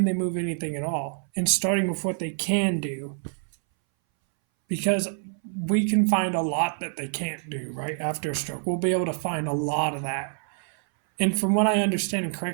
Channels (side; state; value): left; silent; 60 dB below the other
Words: they move anything at all? And starting with what they can do. Because we can find a lot that they can't do, right, after a stroke. We'll be able to find a lot of that. And from what I understand, and